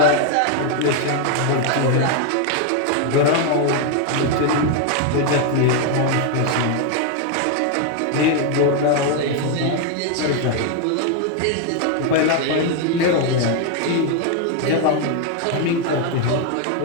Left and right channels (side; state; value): both; different; correlation 0.01